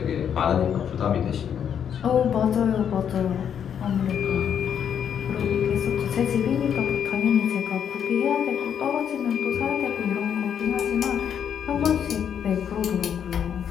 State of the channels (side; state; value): right; quieter; 8.4 dB